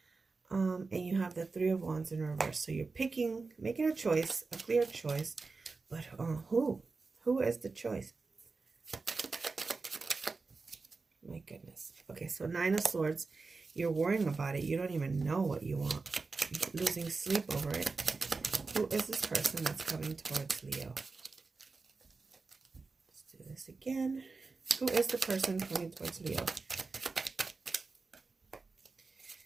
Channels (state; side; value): quieter; left; 4.1 dB